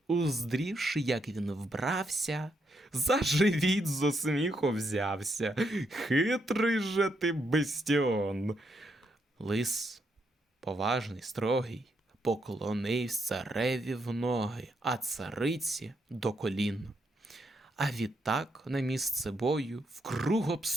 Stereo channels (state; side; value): normal; both; correlation 0.78